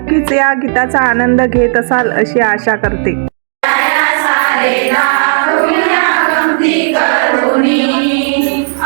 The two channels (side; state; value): left; silent; digital silence